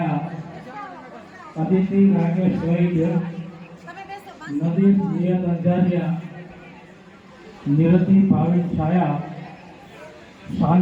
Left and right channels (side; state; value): both; identical; correlation 1.00